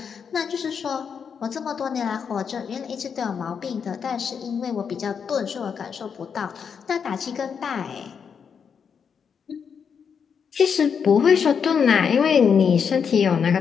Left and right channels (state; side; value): quieter; right; 6.7 dB